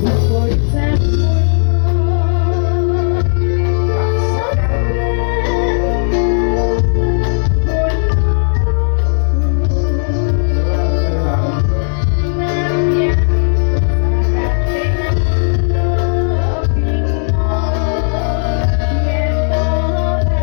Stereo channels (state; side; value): silent; right; digital silence